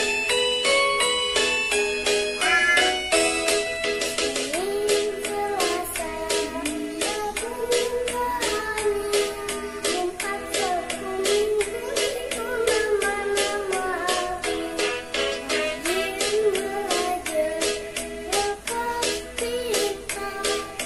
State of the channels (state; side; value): identical; both; correlation 1.00